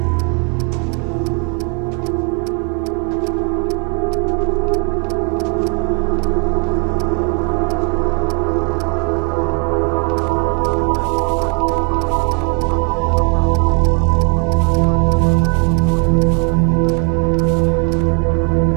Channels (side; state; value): left; quieter; 36.4 dB